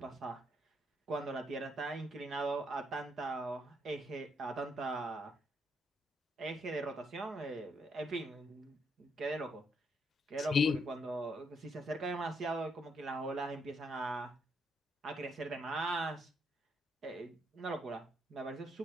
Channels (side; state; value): both; normal; correlation 0.75